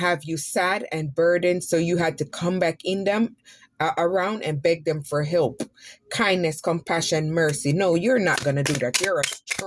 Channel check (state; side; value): identical; both; correlation 1.00